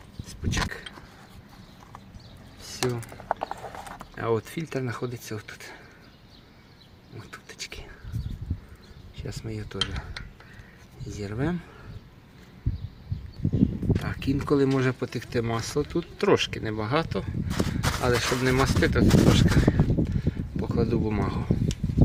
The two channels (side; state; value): both; identical; correlation 1.00